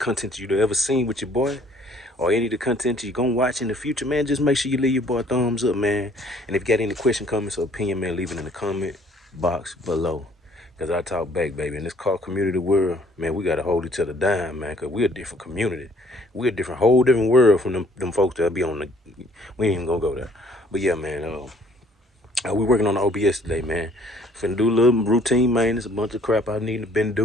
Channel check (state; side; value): normal; both; correlation 0.60